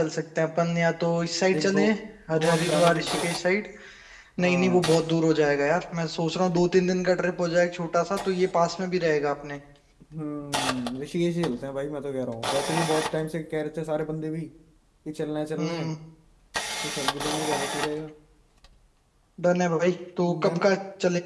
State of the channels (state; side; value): identical; both; correlation 1.00